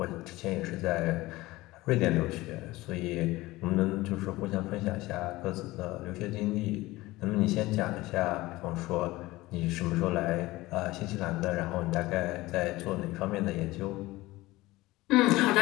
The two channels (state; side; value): quieter; right; 19.2 dB